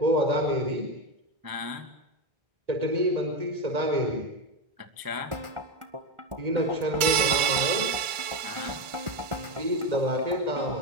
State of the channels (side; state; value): left; late; 2.2 ms